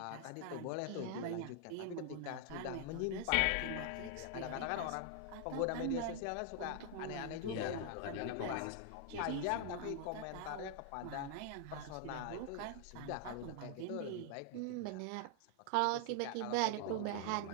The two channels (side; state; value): both; different; correlation 0.00